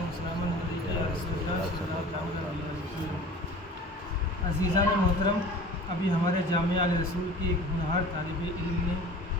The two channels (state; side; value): normal; both; correlation 0.41